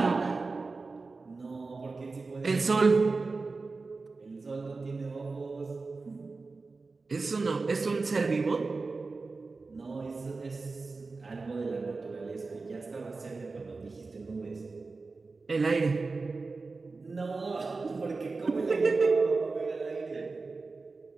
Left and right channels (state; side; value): quieter; left; 3.9 dB